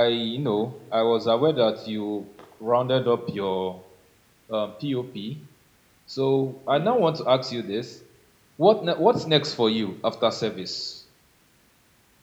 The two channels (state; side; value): identical; both; correlation 1.00